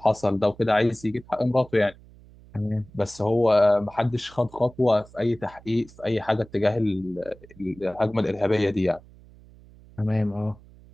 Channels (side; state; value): right; noise; hum, 23 dB below the sound